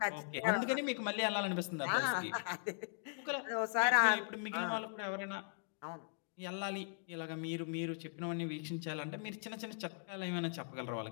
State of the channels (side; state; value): right; silent; digital silence